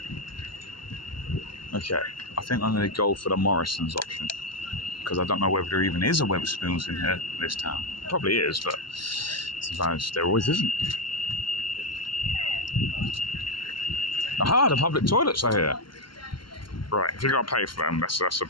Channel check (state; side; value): late; right; 0.72 ms